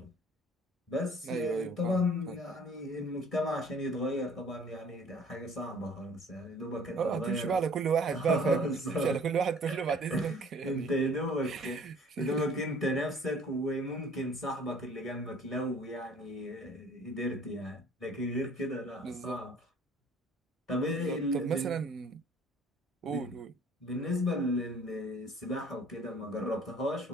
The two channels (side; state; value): both; normal; correlation 0.53